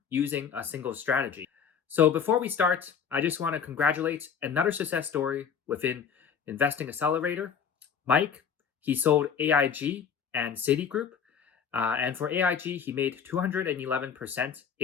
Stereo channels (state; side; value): quieter; right; 7.1 dB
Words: using a single strategy. So, before we start, I just want to congratulate another success story within Investing Accelerator. Mike, he sold AIG and Citigroup. And for AIG, he made 211%